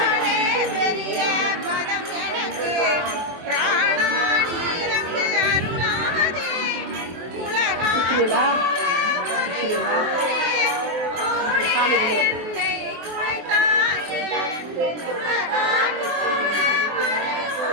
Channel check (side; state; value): left; late; 23 ms